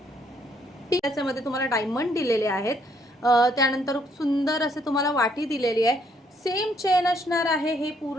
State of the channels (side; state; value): both; normal; correlation 0.69